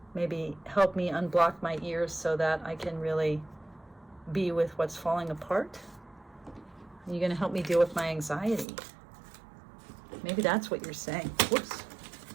maybe help me unblock my ears so that I can really be with what's falling apart? Are you going to help me deal with my anxiety? Maybe that's what you're saying. Whoops.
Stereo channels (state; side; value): drops out; left; at 8.7 s